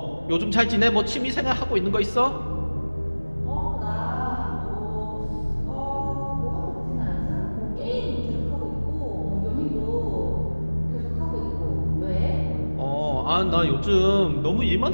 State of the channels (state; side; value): inverted; both; correlation -1.00